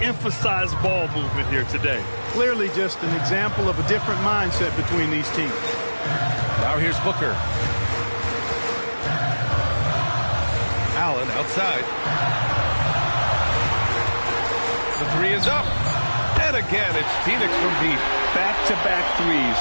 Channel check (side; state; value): both; inverted; correlation -1.00